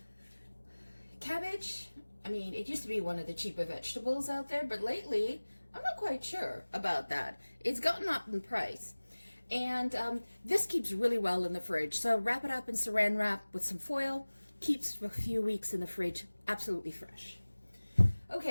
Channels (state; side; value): inverted; both; correlation -1.00